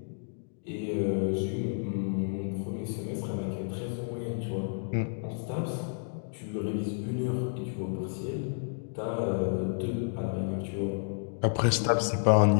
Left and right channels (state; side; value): silent; right; digital silence